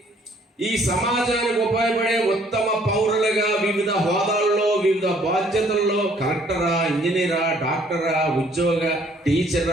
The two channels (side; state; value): both; normal; correlation 0.61